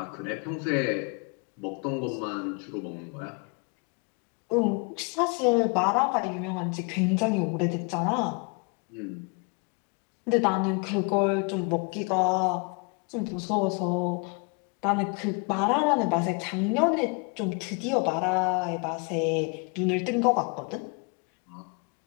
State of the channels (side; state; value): right; quieter; 33.6 dB